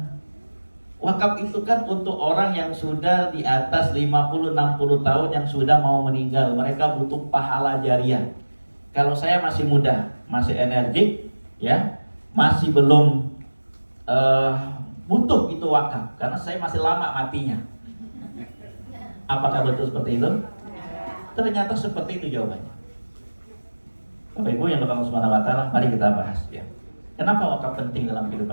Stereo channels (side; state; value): both; inverted; correlation -1.00